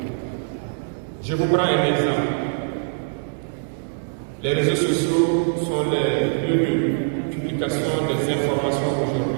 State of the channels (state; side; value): silent; left; digital silence